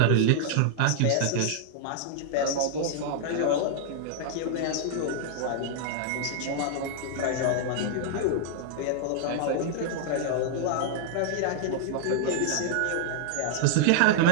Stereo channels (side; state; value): both; different; correlation -0.01